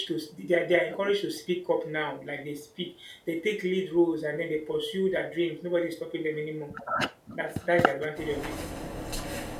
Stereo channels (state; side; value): identical; both; correlation 1.00